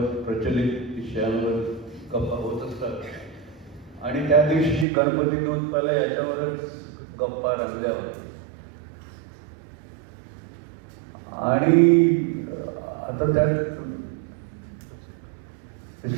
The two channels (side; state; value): left; drops out; at 4.9 s